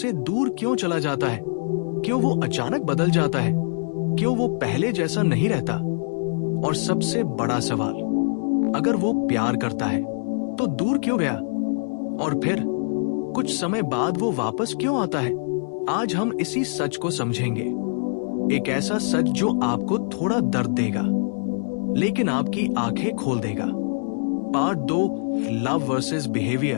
दूर क्यों चला जाता है? क्यों वो अचानक बदल जाता है? क्यों वो पहले जैसा नहीं रहता? और सबसे बड़ा सवाल, अगर वो प्यार करता है तो दूर क्यों गया? और फिर कुछ समय बाद वो वापस क्यों आता है? आज हम इसी सच को समझेंगे। एक ऐसा सच जो आपको थोड़ा दर्द देगा, लेकिन आपकी आंखें खोल देगा। पार्ट 2, लव वर्सेस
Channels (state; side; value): silent; right; 59 dB below the other